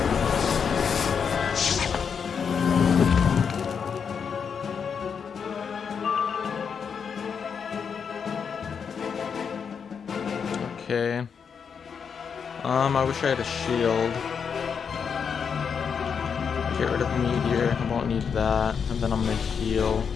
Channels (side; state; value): right; quieter; 6.6 dB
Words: Okay. I wish I had a shield. Get rid of meteor. I won't need that. And then I'm gonna heal.